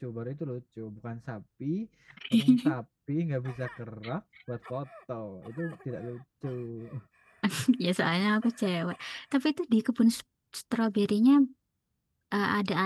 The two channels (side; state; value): both; identical; correlation 1.00